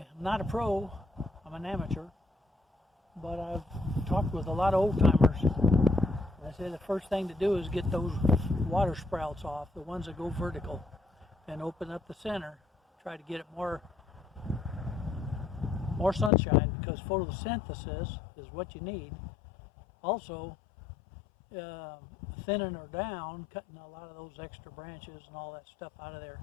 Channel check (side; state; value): right; drops out; at 16.3 s